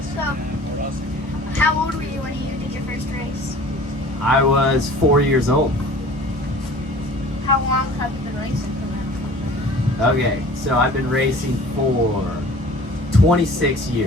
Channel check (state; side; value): normal; both; correlation 0.46